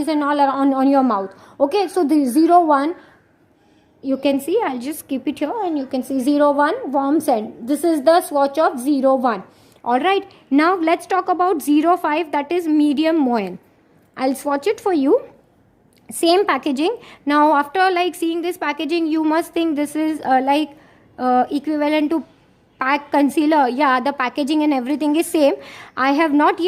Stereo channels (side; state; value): both; identical; correlation 1.00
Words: and all on your mouth. Okay, so the 01, you can see, I'll just keep it here and you can see 01 warm scent. This is the swatch of 01. Alright, now let's talk about 05, that is medium moyen. I'll swatch it for you. Same packaging. Now after like seeing this packaging, you must think this is equivalent to pack concealer. Yeah, the packaging and everything is same. I have not